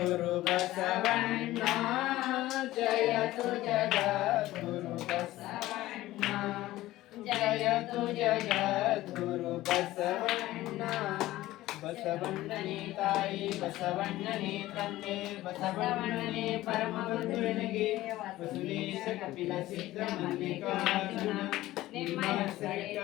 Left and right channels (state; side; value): quieter; right; 16.3 dB